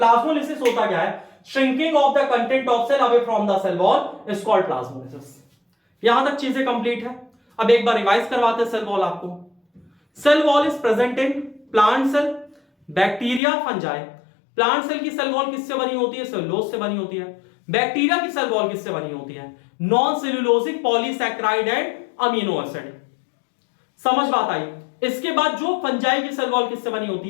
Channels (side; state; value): right; drops out; at 13.4 s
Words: होता क्या है, shrinking of the content of cell away from the cell wall is called plasmolysis. यहां तक चीजें कंप्लीट है। अब एक बार रिवाइज करवाते हैं सेल वॉल आपको। Cell wall is present in plant cell, bacteria, fungi. Plant cell की सेल वॉल किससे बनी होती है, सेलुलोज से बनी होती है। बैक्टीरिया की सेल वॉल किससे बनी होती है, non cellulosic polysaccharide and amino acid. समझ बात आई। इसके बाद जो फंजाई की सेल वॉल किससे बनी होती